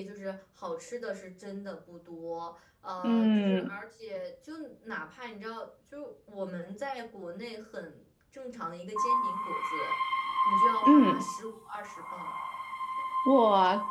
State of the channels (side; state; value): both; identical; correlation 1.00